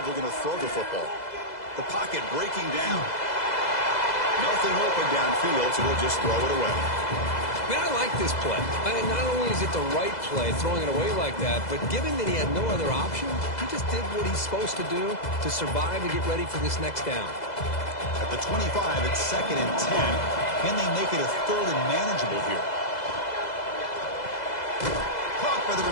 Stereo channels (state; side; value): late; right; 2.0 ms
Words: looking to throw the football. The pocket breaking down. Nothing open downfield, so they'll just throw it away. Man, I like this play. Not only is it the right play, throwing it away like that, but given that he had no other option, he just did what he's supposed to do to survive and get ready for this next down. At the 25, it's 2nd and 10. Can they make it a 3rd and manageable here? Caught by the